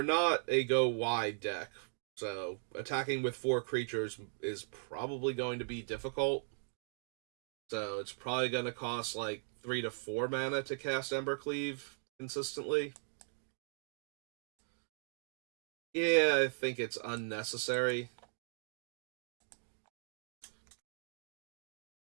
not a go wide deck, so attacking with 4 creatures is probably going to be difficult. So it's probably going to cost like 3 to 4 mana to cast Embercleave consistently. Yeah, I think it's unnecessary.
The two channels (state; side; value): silent; left; 52 dB below the other